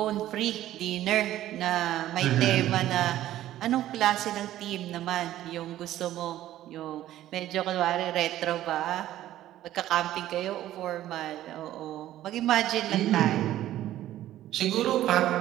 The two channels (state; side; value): quieter; left; 13.5 dB